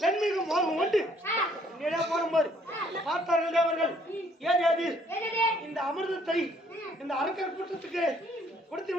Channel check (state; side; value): normal; both; correlation 0.64